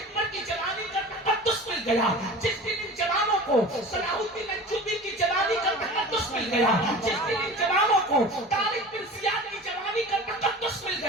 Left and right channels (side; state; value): both; normal; correlation 0.37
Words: کی جوانی کا تقدس مل گیا، جس دن ان جوانوں کو صلاح الدین ایوبی کی جوانی کا تقدس مل گیا، جس دن ان جوانوں کو طارق بن زیاد کی جوانی کا تقدس مل